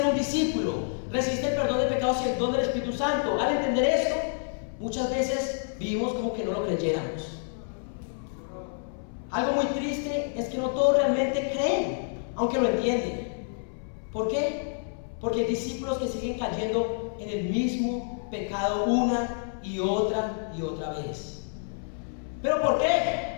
un discípulo, recibiste el perdón de pecados y el don del Espíritu Santo, al entender esto, muchas veces vivimos como que no lo creyéramos. Algo muy triste es que no todos realmente creen, aunque lo entienden. ¿Por qué? Porque hay discípulos que siguen cayendo en el mismo pecado una y otra vez. ¿Pero por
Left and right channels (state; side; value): silent; right; 59 dB below the other